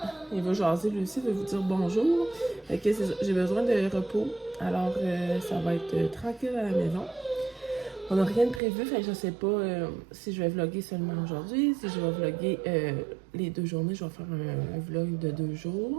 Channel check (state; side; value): drops out; left; at 8.6 s